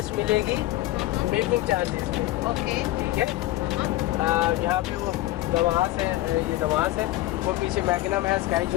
मिलेगी मेकिंग चार्जेस में, ओके, ठीक है। यहाँ पे वो नवाज है, ये नवाज है, वो पीछे मैग्नम है, स्काई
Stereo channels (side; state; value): right; quieter; 16.6 dB